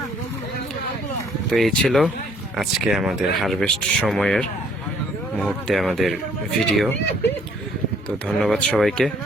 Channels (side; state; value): both; normal; correlation 0.62